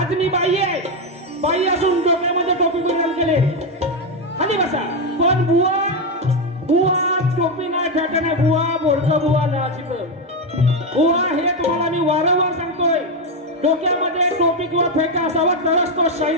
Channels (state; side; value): normal; both; correlation 0.07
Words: मी बाई असून डोक्यामध्ये टोपी परिधान केले खाली बसा पण बुवा टोपी नाही फेटा नाही बुवा बोडकं बुवा नाचित बुवा हे तुम्हाला मी वारंवार सांगतोय डोक्यामध्ये टोपी किंवा फेटा असावा तरच तो